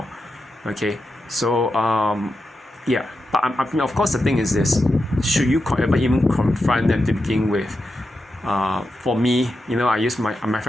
okay? So yeah, but I mean, of course the thing is this: should you ever even confront them to begin with? For me, I use my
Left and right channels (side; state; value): both; normal; correlation 0.88